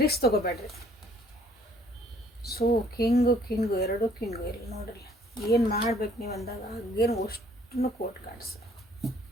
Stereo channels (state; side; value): normal; both; correlation 0.60